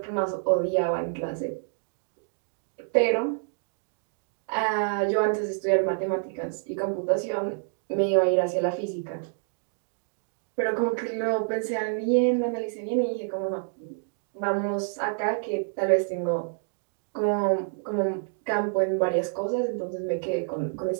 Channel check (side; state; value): left; silent; digital silence